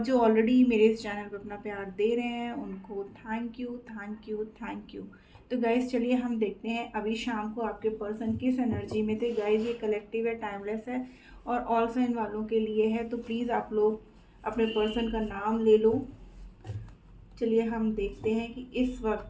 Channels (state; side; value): identical; both; correlation 1.00